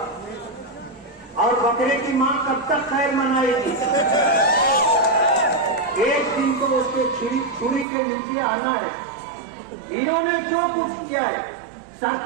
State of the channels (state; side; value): drops out; left; at 7.9 s